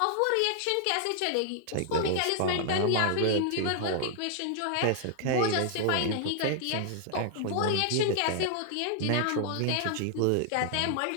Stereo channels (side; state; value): both; different; correlation 0.00